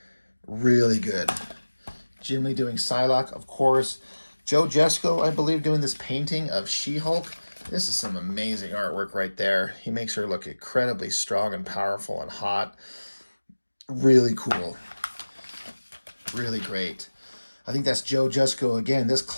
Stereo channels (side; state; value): both; inverted; correlation -1.00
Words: really good. Jim Lee doing Psylocke, of course. Joe Jesko, I believe, doing this painting of She-Hulk. This is some amazing artwork right there. He makes her look incredibly strong and powerful and hot. Really cool. Really great. I think that's Joe Jusko again. This